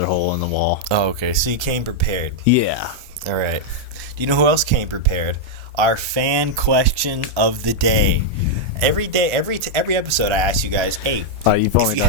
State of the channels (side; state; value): both; normal; correlation -0.02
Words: hole in the wall. Oh, okay. So you came prepared. Yeah. All right. Do you know who else came prepared? Our fan question of the day. Every day, every episode, I ask you guys, hey, you've only